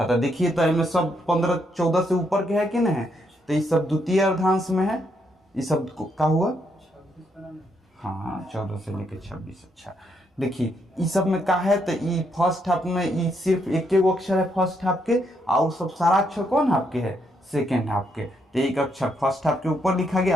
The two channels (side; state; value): both; normal; correlation 0.76